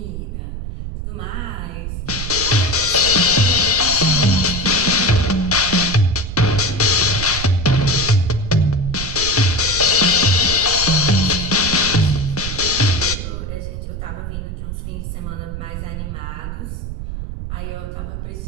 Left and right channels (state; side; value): noise; right; rumble, 7 dB below the sound